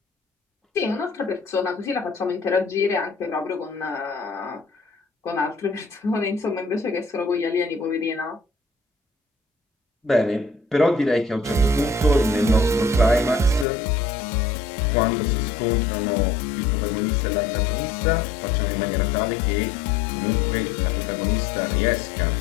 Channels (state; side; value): drops out; right; at 13.7 s